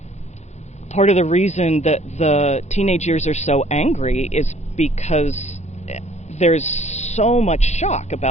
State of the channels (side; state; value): right; late; 0.33 ms